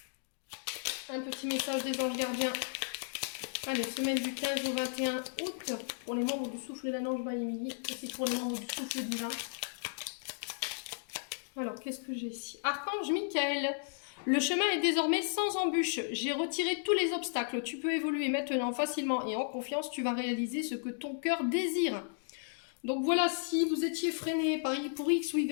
un petit message des anges gardiens. Allez, semaine du 15 au 21 août pour les membres du souffle de la Nange by Emily. Et c'est pour les membres du souffle divin. Alors, qu'est-ce que j'ai ici? Archange Michael. Le chemin est désormais sans embûche. J'ai retiré tous les obstacles. Tu peux évoluer maintenant facilement et en confiance. Tu vas réaliser ce que ton cœur désire. Donc voilà, si vous étiez freiné pour X ou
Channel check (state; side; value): silent; right; digital silence